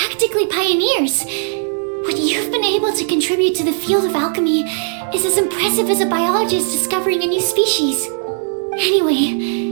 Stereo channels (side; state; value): left; silent; digital silence